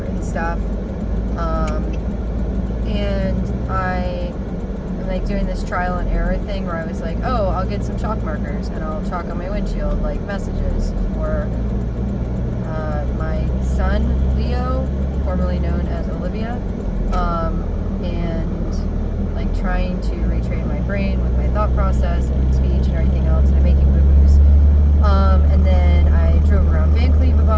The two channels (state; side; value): identical; both; correlation 1.00